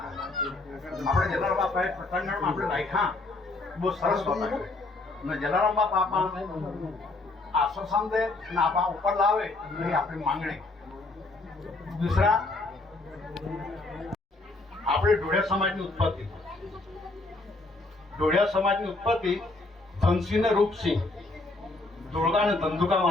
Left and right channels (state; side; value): quieter; right; 3.2 dB